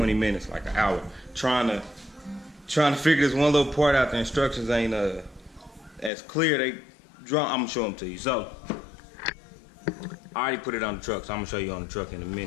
minutes, like an hour, trying to figure this one little part out. The instructions ain't as clear. They draw. I'm gonna show them to you. So I already put it on the truck, so I'm gonna show you on the truck in a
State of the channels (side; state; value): right; drops out; at 6.1 s